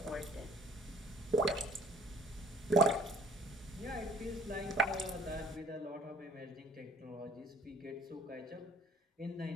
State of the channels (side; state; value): both; normal; correlation 0.54